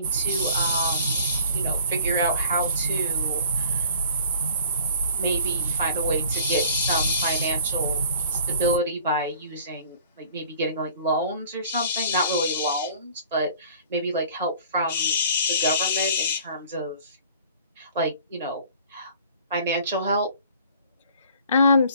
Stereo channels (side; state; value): both; inverted; correlation -0.50